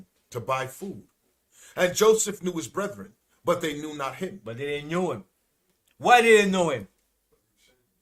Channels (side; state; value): both; identical; correlation 1.00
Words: to buy food. And Joseph knew his brethren, but they knew not him. But they didn't know him. Why they didn't know him?